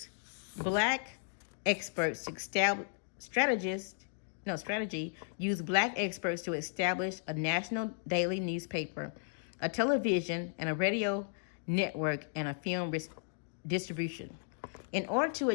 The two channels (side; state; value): right; silent; digital silence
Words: black experts to use black experts to establish a national daily newspaper, a television and a radio network, and a film distribution. In order to